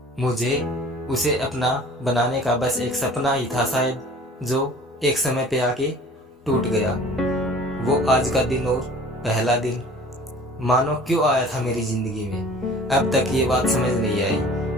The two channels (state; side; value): normal; both; correlation 0.47